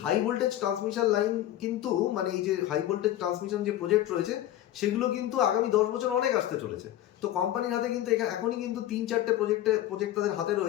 হাই ভোল্টেজ ট্রান্সমিশন লাইন কিন্তু, মানে এই যে হাই ভোল্টেজ ট্রান্সমিশন যে প্রজেক্ট রয়েছে সেগুলো কিন্তু আগামী 10 বছর অনেক আসতে চলেছে। তো কোম্পানির হাতে কিন্তু এখনই কিন্তু 3-4টে প্রজেক্ট তাদের হাতে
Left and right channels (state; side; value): quieter; right; 13.1 dB